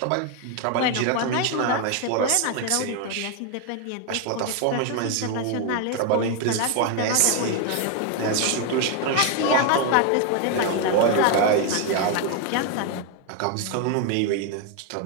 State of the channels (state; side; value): different; both; correlation 0.01